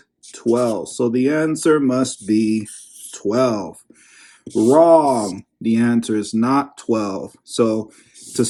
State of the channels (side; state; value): both; identical; correlation 1.00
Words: 12. So the answer must be 12. Wrong. The answer is not 12. So to